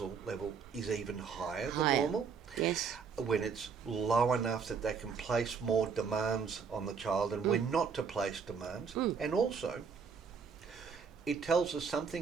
level is even higher than normal. Yes. When it's low enough that they can place more demands on the child and when not to place demands. And also, it tells us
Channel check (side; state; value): left; quieter; 5.9 dB